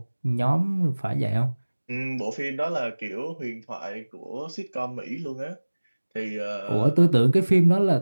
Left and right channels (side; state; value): both; inverted; correlation -1.00